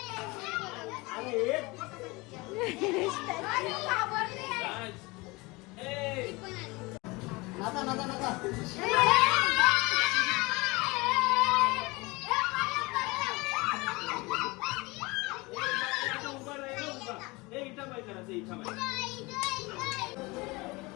एन्जॉय करायचं इच्छा माझी.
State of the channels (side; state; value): right; quieter; 24.1 dB